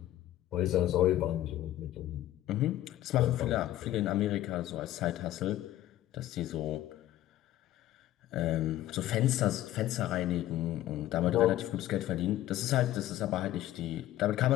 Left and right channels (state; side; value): quieter; right; 13.9 dB